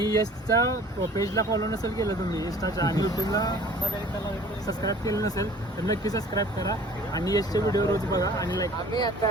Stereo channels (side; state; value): both; normal; correlation 0.48